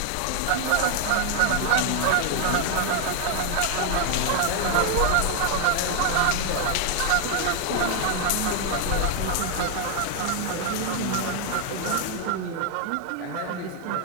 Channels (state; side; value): different; both; correlation 0.00